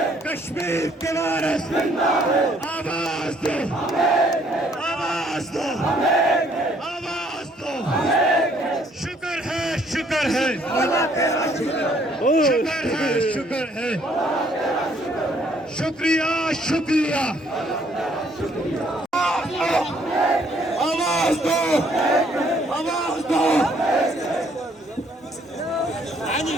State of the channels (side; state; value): both; normal; correlation 0.65